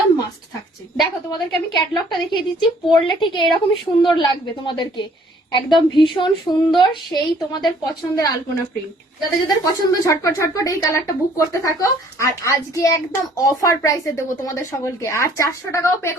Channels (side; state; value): both; normal; correlation 0.59